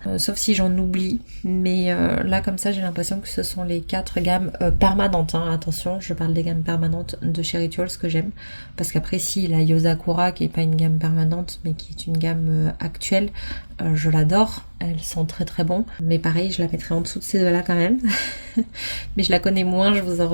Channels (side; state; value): both; inverted; correlation -1.00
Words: sauf si j'en oublie, mais là comme ça j'ai l'impression que ce sont les 4 gammes permanentes, hein. Attention, je parle des gammes permanentes de chez Rituals que j'aime, parce qu'après si la Yosakura qui est pas une gamme permanente mais qui est une gamme actuelle, je l'adore, elles sont très bon, mais pareil je la mettrai en dessous de ces deux-là quand même. Mais je la connais moins, je vous en